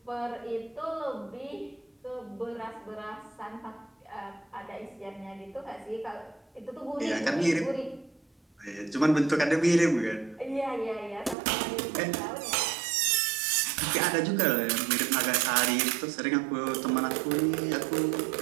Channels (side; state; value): left; drops out; at 11.4 s